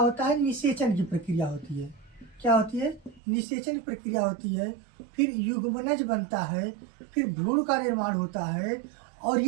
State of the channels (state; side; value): drops out; left; at 3.2 s